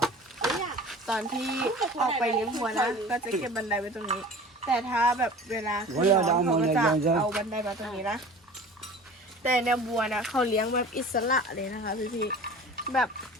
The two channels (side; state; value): both; normal; correlation 0.41